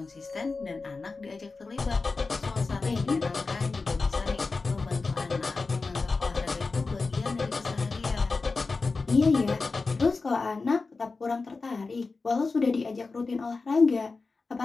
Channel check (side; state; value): right; quieter; 4.0 dB